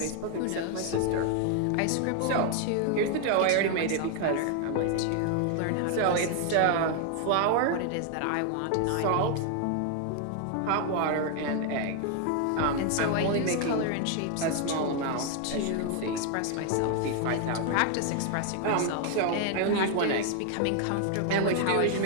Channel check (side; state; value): both; different; correlation 0.00